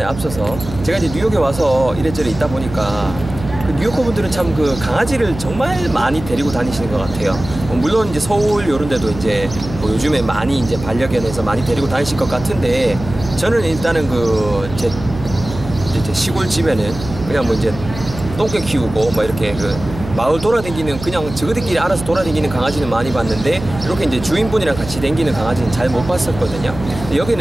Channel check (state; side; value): noise; right; hum, 11 dB below the sound